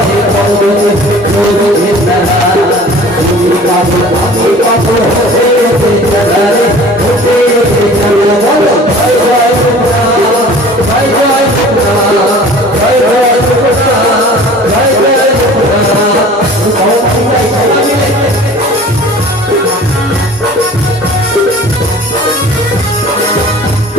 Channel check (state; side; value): normal; both; correlation 0.45